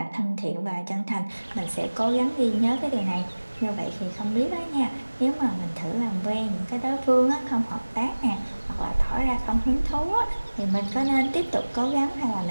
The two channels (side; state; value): both; inverted; correlation -1.00